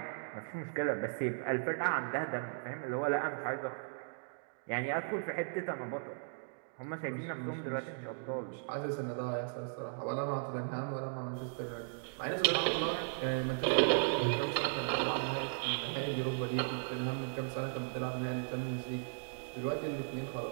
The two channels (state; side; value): silent; left; digital silence